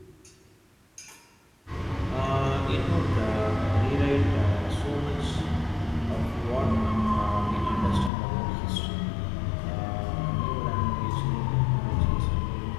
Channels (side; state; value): right; drops out; at 8.1 s